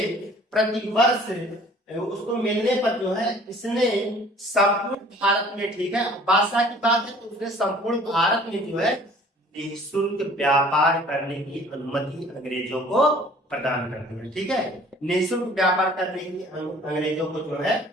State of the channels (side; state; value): both; normal; correlation 0.51